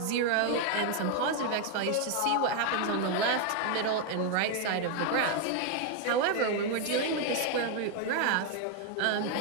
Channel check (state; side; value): different; both; correlation 0.00